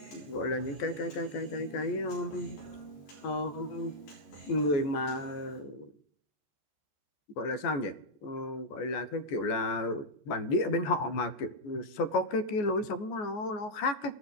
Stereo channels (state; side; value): late; right; 14 ms